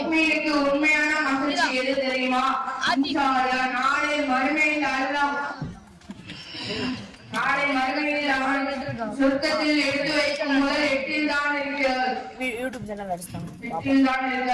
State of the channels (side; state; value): both; identical; correlation 1.00